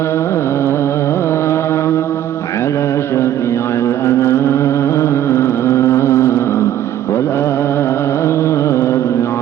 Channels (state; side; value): quieter; left; 11.5 dB